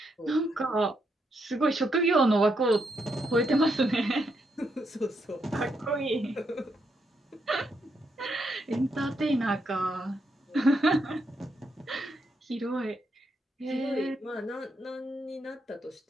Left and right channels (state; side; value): normal; both; correlation 0.79